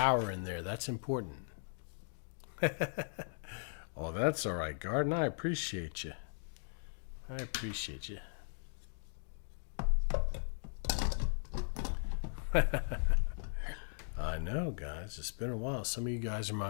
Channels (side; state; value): right; silent; digital silence